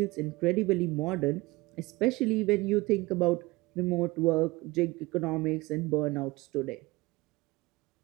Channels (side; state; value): left; quieter; 21.7 dB